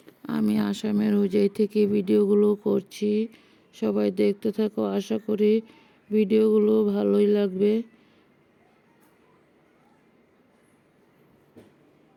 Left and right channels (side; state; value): both; identical; correlation 1.00